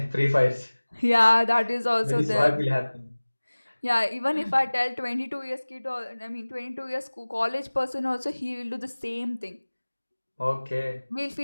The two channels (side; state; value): both; inverted; correlation -1.00